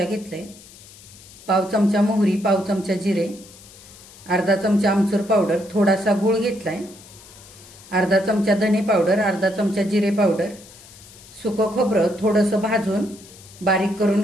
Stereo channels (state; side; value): noise; left; hiss, 21 dB below the sound